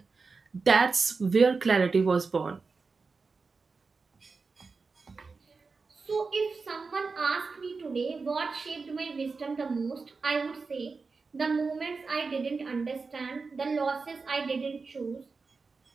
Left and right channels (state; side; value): quieter; left; 4.5 dB